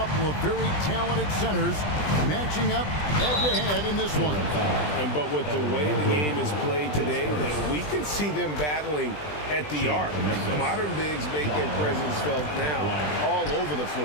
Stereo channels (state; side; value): late; right; 20 ms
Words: of very talented centers matching up head-to-head in this one. But with the way the game is played today, we could see them battling at the arc. Modern bigs make their presence felt now all over the